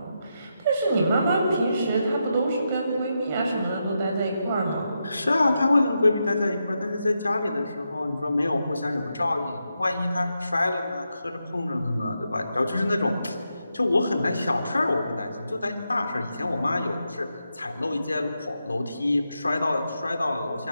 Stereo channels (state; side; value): inverted; both; correlation -0.85